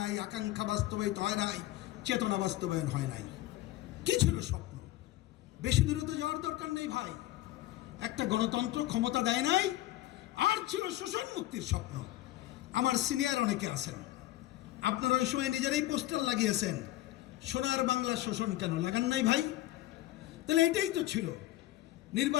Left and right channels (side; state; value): right; quieter; 15.7 dB